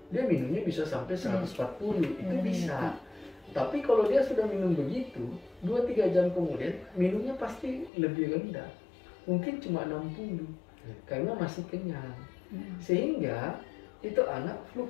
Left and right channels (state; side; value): drops out; right; at 7.9 s